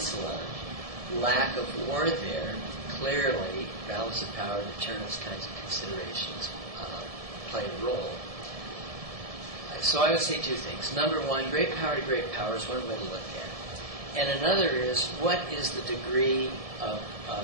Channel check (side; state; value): left; late; 1.7 ms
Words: lack of war there, clearly, balance of power, deterrence kinds of considerations play a role. So I would say two things. Number one, great power to great power is one way to look at it. And another is, what is the degree of